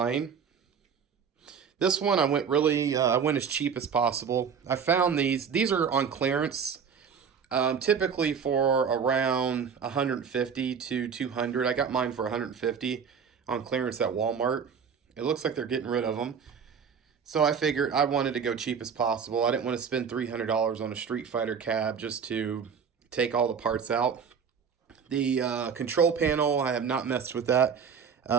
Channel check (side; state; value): left; quieter; 6.7 dB